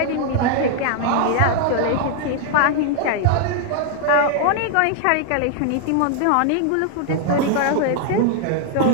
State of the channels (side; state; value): both; different; correlation 0.00